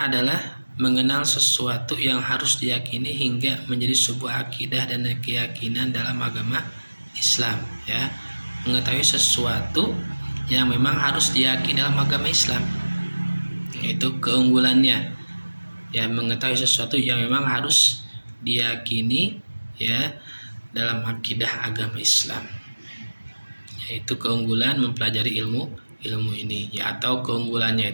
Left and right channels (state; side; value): inverted; both; correlation -1.00